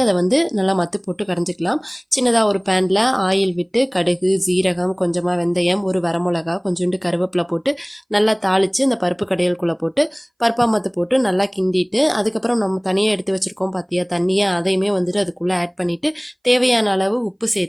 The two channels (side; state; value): both; identical; correlation 1.00